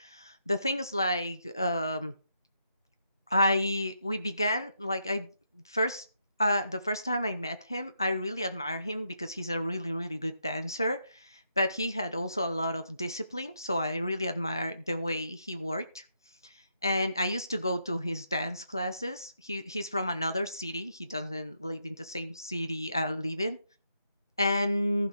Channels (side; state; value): both; inverted; correlation -0.79